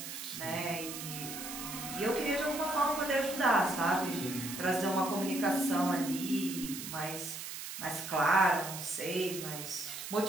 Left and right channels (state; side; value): noise; right; hiss, 8 dB below the sound